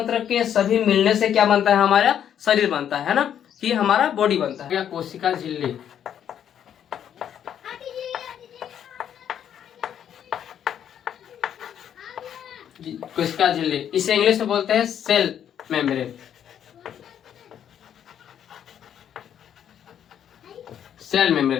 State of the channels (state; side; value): quieter; right; 9.5 dB